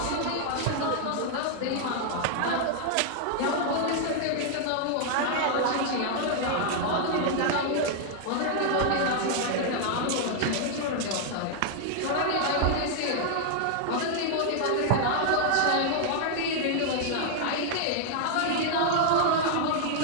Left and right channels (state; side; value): different; both; correlation 0.00